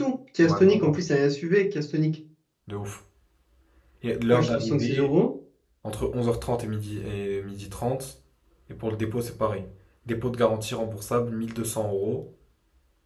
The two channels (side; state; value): both; identical; correlation 1.00